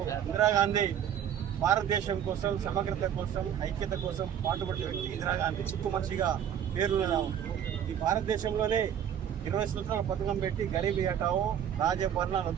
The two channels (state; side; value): quieter; left; 9.4 dB